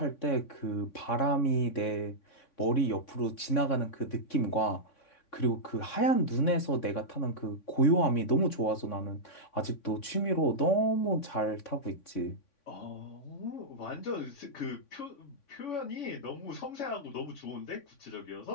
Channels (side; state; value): right; late; 3.6 ms